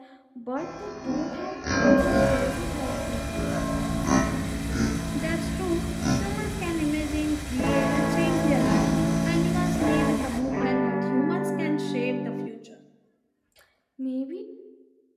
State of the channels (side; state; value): both; identical; correlation 1.00